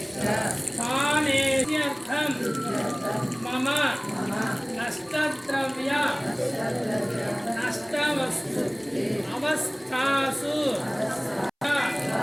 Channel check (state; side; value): identical; both; correlation 1.00